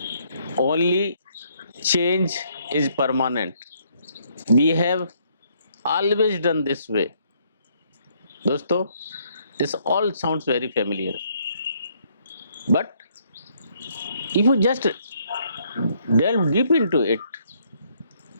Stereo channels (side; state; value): both; inverted; correlation -0.69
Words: only change is permanent, we have always done this way. दोस्तों, this all sounds very familiar, but if you just delve deep into it,